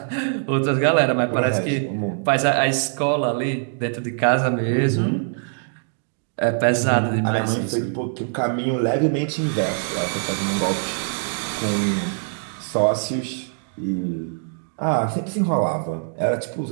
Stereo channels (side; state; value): left; silent; digital silence